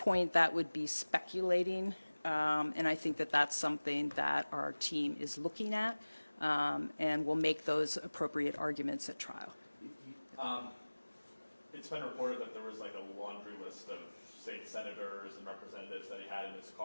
that would be speculating, and I think that that's something that our team is looking at, and will make those appropriate arguments at trial. It's been reported that there was like a laundry list of state senators and representatives that he had in his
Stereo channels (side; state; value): both; inverted; correlation -1.00